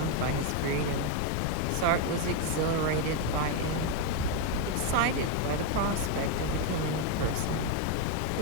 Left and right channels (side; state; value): both; different; correlation 0.02